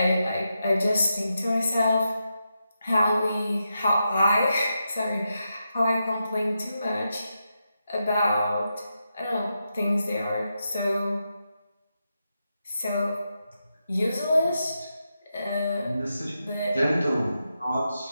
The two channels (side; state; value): both; inverted; correlation -0.86